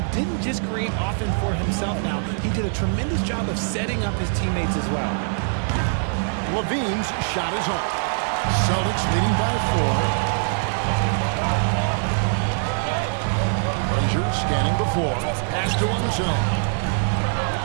didn't just create offense for himself now. He did a tremendous job of setting up his teammates as well. LaVine's shot is off. Celtics leading by 4. Frazier scanning the floor. Pass to one zone.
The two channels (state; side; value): silent; left; digital silence